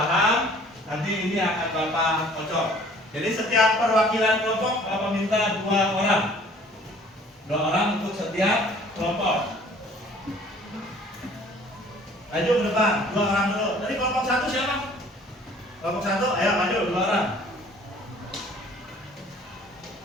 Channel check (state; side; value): normal; both; correlation 0.53